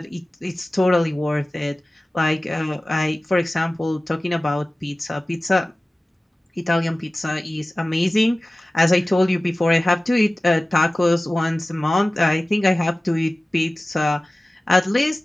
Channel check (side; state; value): both; normal; correlation 0.97